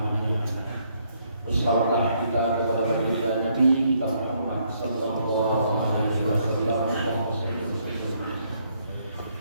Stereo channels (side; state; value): both; inverted; correlation -0.71